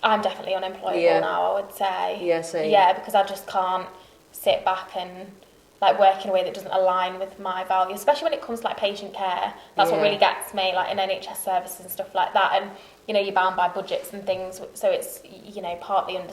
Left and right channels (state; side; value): identical; both; correlation 1.00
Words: I'm definitely unemployable now, I would say. Yeah, same. Yeah, because I just can't sit back and like work in a way that doesn't align with my values, especially when it comes to like patient care. That's what really gets me, like in NHS services and stuff like that. And you know, you're bound by budgets and things, so it's, you know, partly